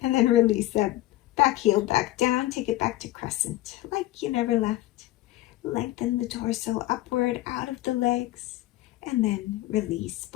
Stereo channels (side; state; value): right; quieter; 16.4 dB